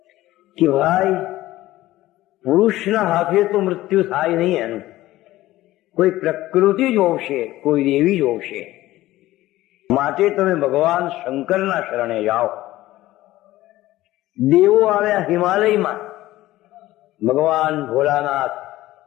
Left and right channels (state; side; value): quieter; right; 16.3 dB